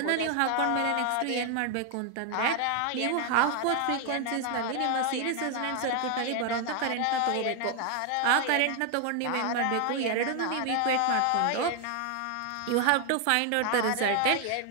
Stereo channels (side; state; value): both; different; correlation 0.01